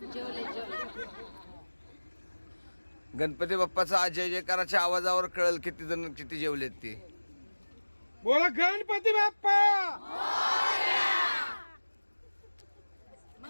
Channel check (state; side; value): inverted; both; correlation -1.00